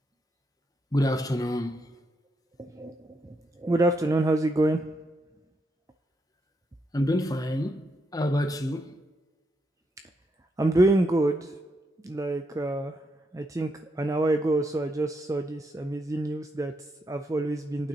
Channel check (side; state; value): both; normal; correlation 0.79